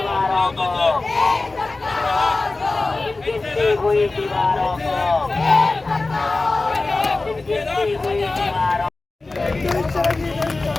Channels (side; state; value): right; quieter; 3.4 dB